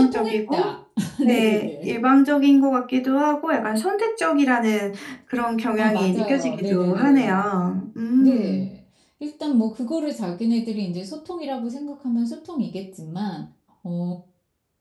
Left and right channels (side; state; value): both; identical; correlation 1.00